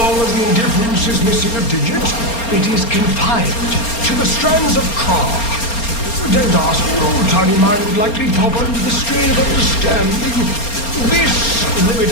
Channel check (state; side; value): late; right; 4.3 ms